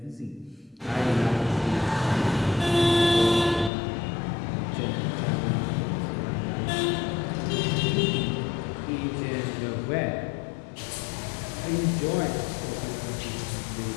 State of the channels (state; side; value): drops out; right; at 3.7 s